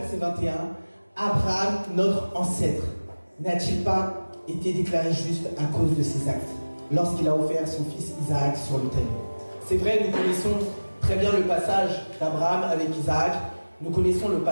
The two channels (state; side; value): inverted; both; correlation -1.00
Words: 21. Abraham, notre ancêtre, n'a-t-il pas été déclaré juste à cause de ses actes lorsqu'il a offert son fils Isaac sur l'autel? C'est vrai, nous connaissons très bien le passage d'Abraham avec Isaac. Nous connaissons le